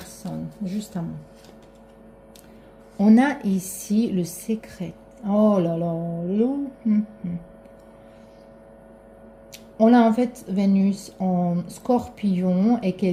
justement. On a ici le secret. Oh là là. On a en fait Vénus en Scorpion et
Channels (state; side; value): identical; both; correlation 1.00